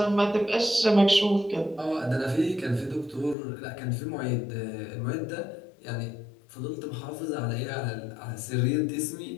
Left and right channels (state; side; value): drops out; right; at 3.4 s